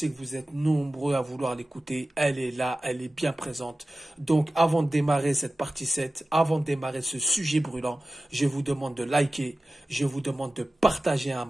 que vous êtes nombreux à vouloir l'écouter, elle est là, elle est bien présente. Donc avant de démarrer cette partie 7, avant de démarrer ce sujet brûlant, je vous demande de liker, je vous demande de partager un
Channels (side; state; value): both; normal; correlation 0.95